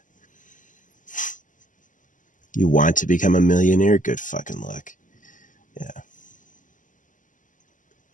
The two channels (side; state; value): right; late; 0.37 ms